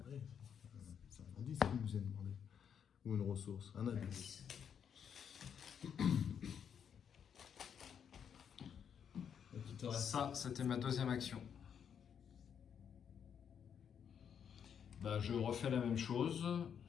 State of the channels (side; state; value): right; quieter; 7.9 dB